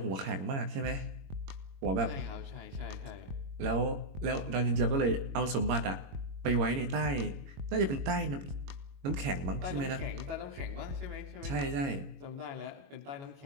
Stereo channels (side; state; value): left; late; 22 ms